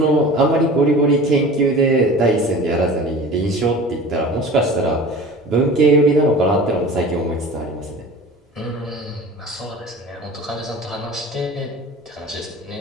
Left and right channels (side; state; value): both; normal; correlation 0.39